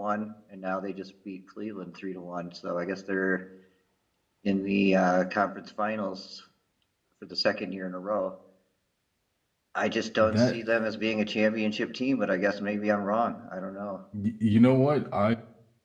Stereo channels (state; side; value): identical; both; correlation 1.00